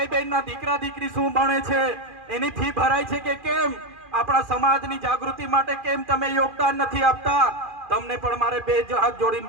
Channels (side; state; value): left; late; 2.4 ms